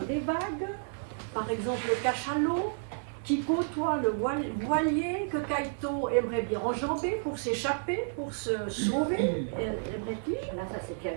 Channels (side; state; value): left; silent; digital silence